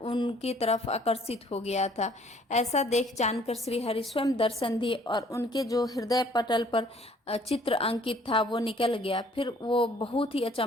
उनकी तरफ आकर्षित हो गया था। ऐसा देख जानकर श्री हरि स्वयं दर्शन दिए और उनके जो हृदय पटल पर चित्र अंकित था वो निकल गया। फिर वो बहुत ही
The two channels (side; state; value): both; normal; correlation 0.59